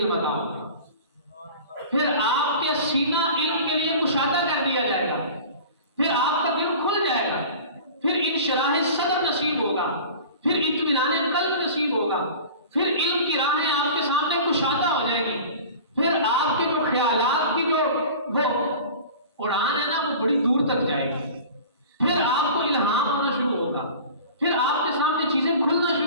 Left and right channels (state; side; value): inverted; both; correlation -0.39